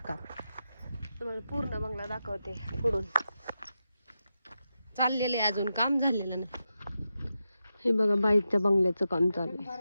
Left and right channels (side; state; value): both; inverted; correlation -0.89